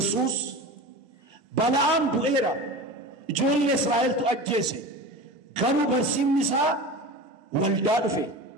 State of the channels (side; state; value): both; normal; correlation 0.31